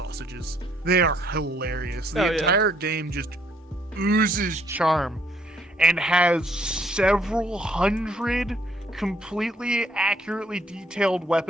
They are hilarious. The Oh, yeah. entire game just oozes charm and has several hundred completely accurately detailed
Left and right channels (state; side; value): normal; both; correlation 0.66